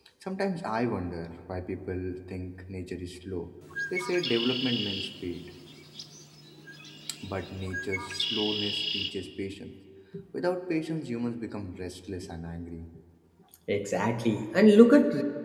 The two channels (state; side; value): identical; both; correlation 1.00